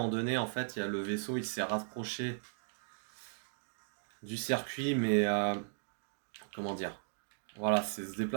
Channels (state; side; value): silent; left; digital silence